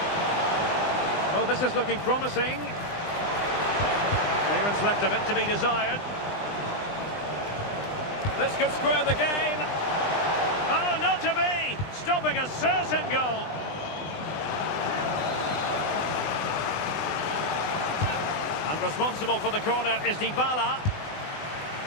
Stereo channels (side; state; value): right; late; 20 ms